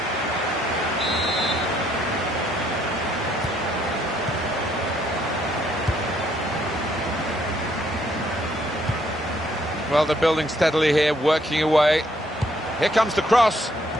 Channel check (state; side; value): normal; both; correlation 0.69